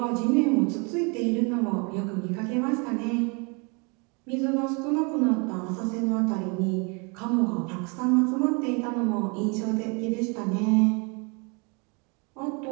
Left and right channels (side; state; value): left; quieter; 32.2 dB